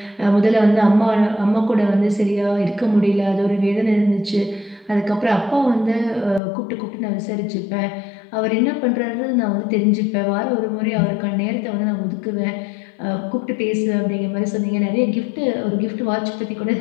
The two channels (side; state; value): right; drops out; at 6.4 s